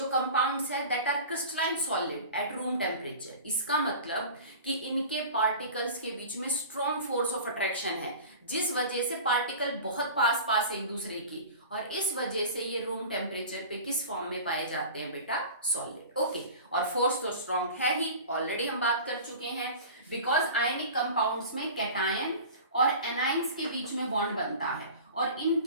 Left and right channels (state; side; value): inverted; both; correlation -0.37